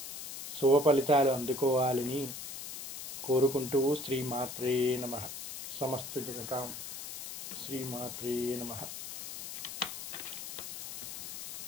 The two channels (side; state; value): left; noise; hiss, 8 dB below the sound